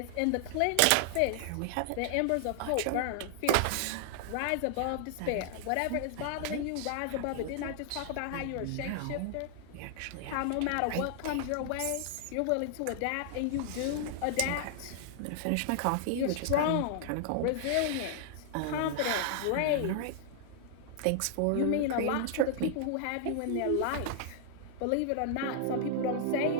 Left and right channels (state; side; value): different; both; correlation -0.01